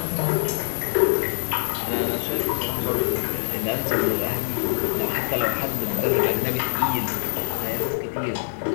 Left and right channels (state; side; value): silent; right; digital silence